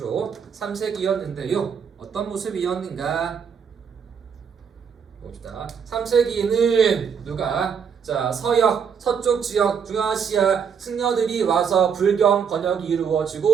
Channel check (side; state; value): left; quieter; 6.8 dB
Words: 3세기였는데요. 어떤 모습이었는가? 봅시다. 3세기에는 누가? 자, 서역, 서쪽 지역, 중아시아 승려들이 와서 불경 번역이